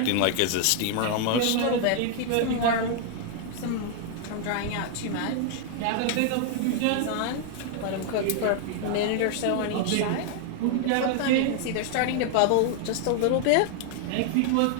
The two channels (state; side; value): different; both; correlation 0.00